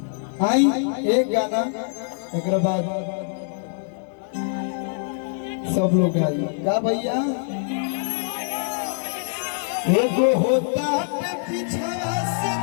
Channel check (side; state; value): right; silent; digital silence